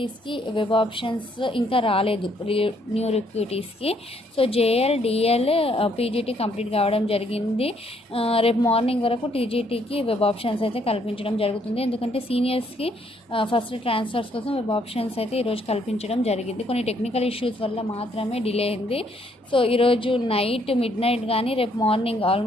వెబ్ ఆప్షన్స్ ఇంకా రాలేదు, న్యూ రిక్రూటీస్కి. So JL DL PGT complete కావడం జరిగింది. రేపు మార్నింగ్ వరకు టీజీటీకి వెబ్ ఆప్షన్స్ అయితే కల్పించడం జరుగుతుంది. ఎందుకంటే సీనియర్స్కి ఫస్ట్ ట్రాన్స్ఫర్స్ కోసం వెబ్ ఆప్షన్స్ అయితే ఈరోజు కల్పించడం జరిగింది. కొన్ని టెక్నికల్ ఇష్యూస్ వల్ల మాత్రమే డిలే అయింది. సో ఈరోజు మిడ్ నైట్ కానీ రేపు మార్నింగ్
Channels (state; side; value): normal; both; correlation 0.69